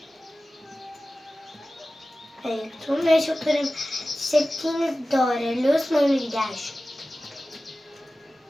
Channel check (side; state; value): both; normal; correlation 0.96